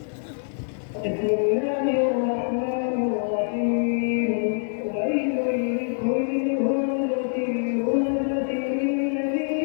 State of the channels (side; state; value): right; silent; digital silence